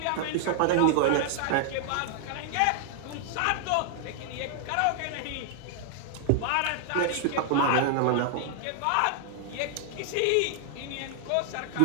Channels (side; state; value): both; different; correlation 0.00